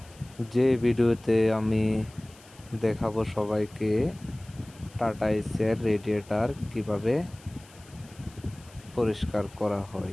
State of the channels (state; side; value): noise; left; hiss, 24 dB below the sound